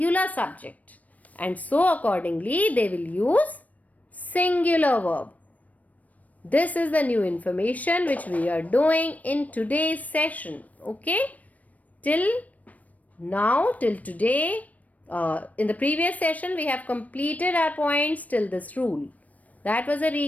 subject. And so accordingly, they will use singular verb. This is the new information which we are doing in today's session. Okay? Till now, till today, in the previous session, we have completed our points till this rule. That was a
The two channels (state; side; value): late; right; 0.071 ms